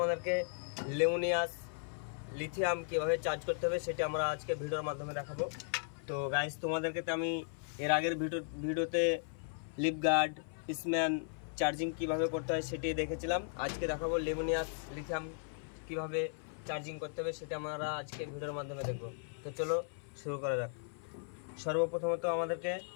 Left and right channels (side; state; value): right; silent; 53 dB below the other